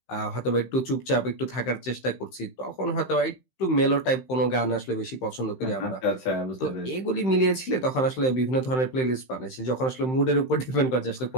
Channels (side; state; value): right; late; 15 ms